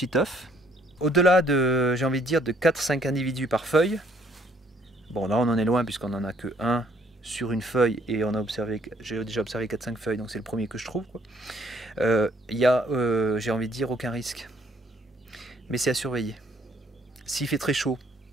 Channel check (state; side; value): normal; both; correlation 0.65